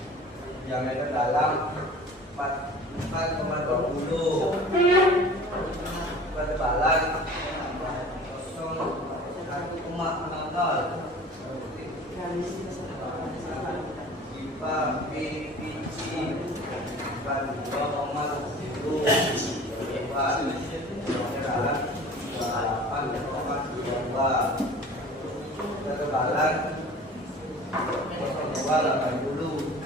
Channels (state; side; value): normal; both; correlation 0.43